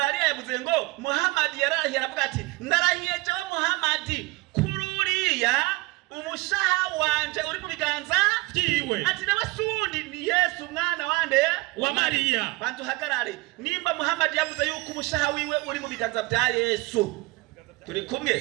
yavuze ngo Muhammad yarahiye aravuga ati ndarahiye jewe Muhammad kururia umushaha wanje uri mu biganza vyiwe, ati n'abasundi ni Yesu mwana wande wa Maria. Bantu hagarare nimba Muhammad yavuze yuko umushaha wiwe uri mu biganza vya Yesu, turi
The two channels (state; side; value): quieter; left; 22.5 dB